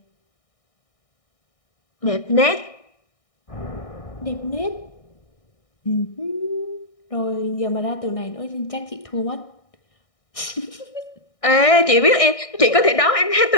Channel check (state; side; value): late; right; 1.6 ms